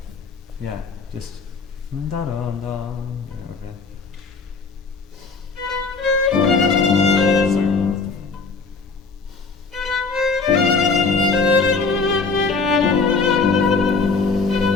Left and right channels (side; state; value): right; quieter; 4.4 dB